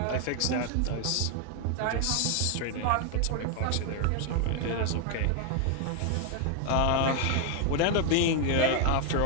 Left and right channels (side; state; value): both; different; correlation 0.00